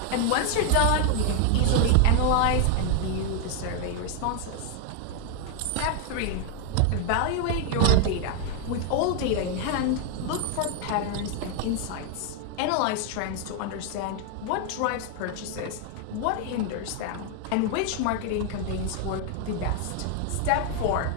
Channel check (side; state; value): both; different; correlation 0.00